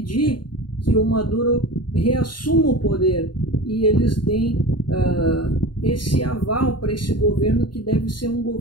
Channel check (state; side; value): late; right; 0.71 ms